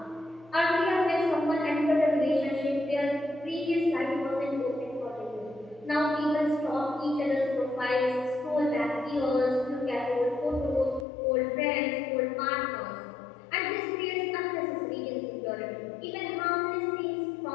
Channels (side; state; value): right; drops out; at 11.1 s